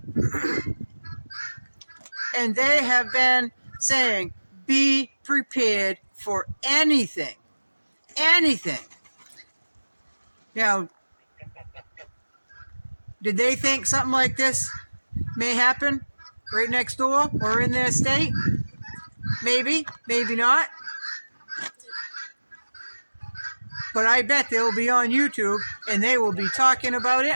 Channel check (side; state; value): both; inverted; correlation -1.00